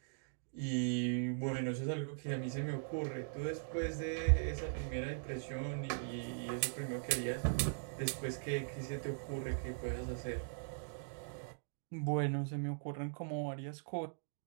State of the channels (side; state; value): left; silent; digital silence